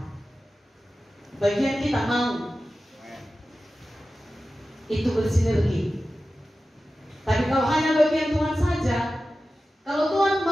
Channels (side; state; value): both; normal; correlation 0.94